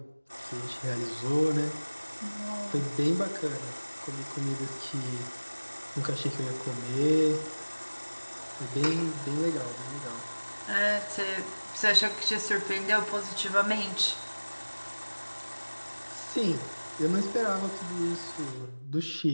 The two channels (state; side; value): inverted; both; correlation -1.00